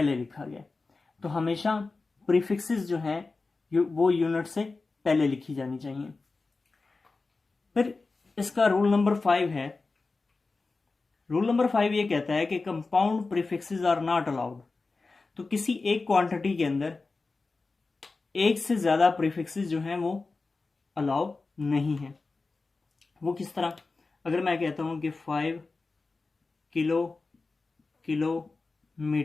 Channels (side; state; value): right; quieter; 3.8 dB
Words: लिखा गया। तो हमेशा प्रीफिक्सेस जो हैं वो यूनिट से पहले लिखी जानी चाहिए। फिर इसका रूल नंबर 5 है। रूल नंबर 5 ये कहता है कि compound prefixes are not allowed. तो किसी एक क्वांटिटी के अंदर एक से ज्यादा प्रीफिक्सेस जो हैं वो अलाउ नहीं है। वो किस तरह? अगर मैं कहता हूं कि 5